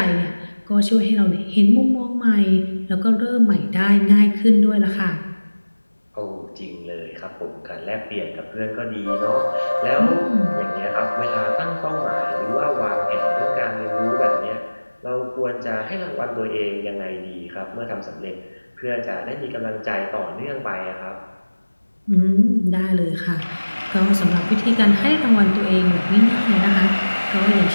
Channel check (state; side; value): inverted; both; correlation -1.00